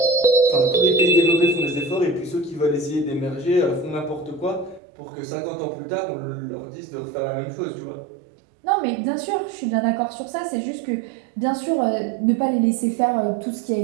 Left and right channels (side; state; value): left; drops out; at 4.8 s